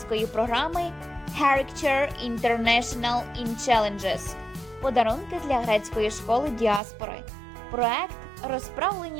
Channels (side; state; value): left; drops out; at 6.8 s